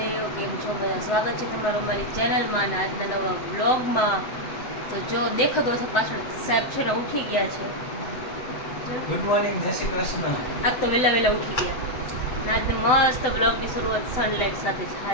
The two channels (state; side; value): late; right; 7.9 ms